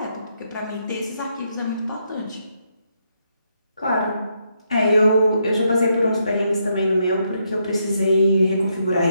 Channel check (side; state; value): both; inverted; correlation -0.78